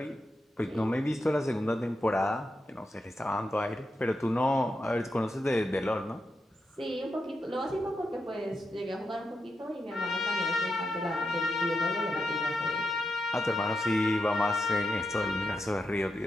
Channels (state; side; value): normal; both; correlation 0.86